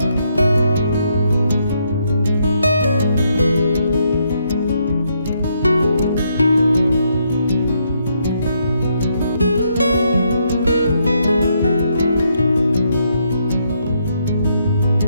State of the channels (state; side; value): inverted; both; correlation -0.76